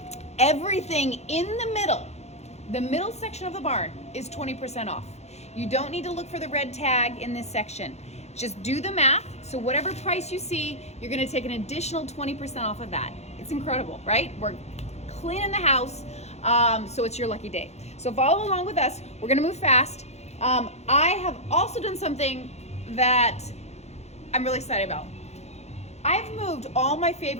Everything in the middle section of the barn is 20% off. You don't need to look for the red tag in this section. Just do the math. So whatever price you see, you're gonna take an additional 20% off of that. It's incredible, right? We're cleaning the house, so it's your lucky day. So follow along with us. We're gonna move fast. I have also done something that I'm really excited about. I've moved all my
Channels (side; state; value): right; late; 0.32 ms